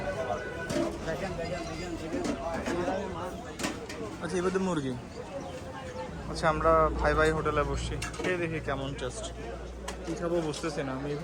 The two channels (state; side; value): identical; both; correlation 1.00